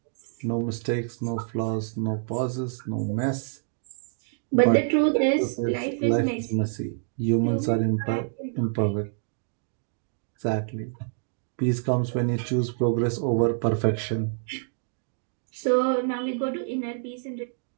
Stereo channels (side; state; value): left; silent; digital silence